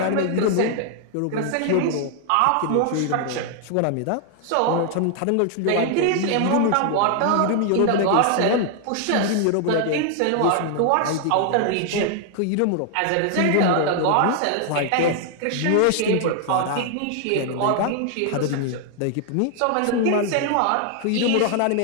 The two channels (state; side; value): different; both; correlation 0.00